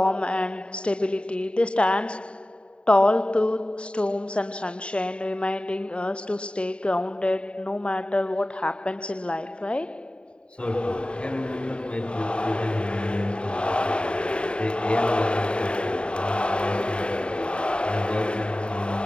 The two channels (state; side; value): late; right; 0.054 ms